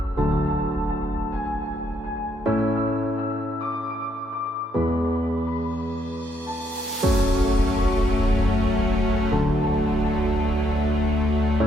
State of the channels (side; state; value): both; normal; correlation 0.74